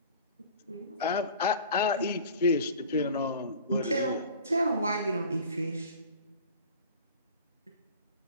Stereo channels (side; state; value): both; inverted; correlation -0.42